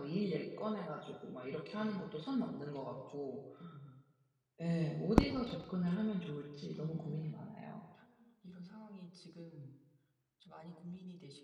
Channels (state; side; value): identical; both; correlation 1.00